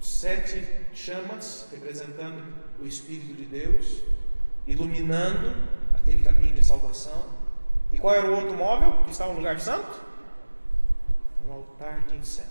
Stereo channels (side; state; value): both; inverted; correlation -1.00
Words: 7 chamas representando o Espírito de Deus, iluminando aquele caminho de salvação. E qual era o outro móvel que estava no lugar santo? Um altar de